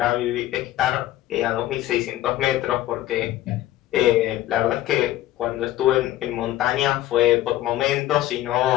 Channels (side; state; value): right; quieter; 14.4 dB